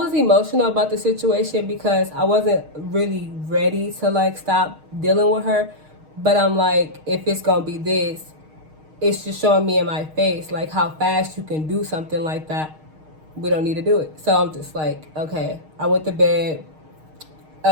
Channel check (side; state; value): left; late; 6.4 ms